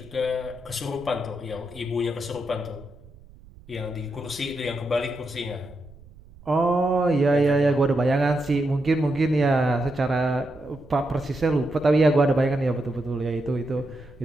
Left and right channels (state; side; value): noise; right; rumble, 22 dB below the sound